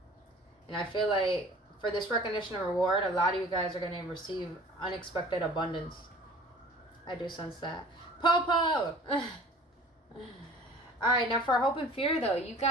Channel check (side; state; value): both; normal; correlation 0.46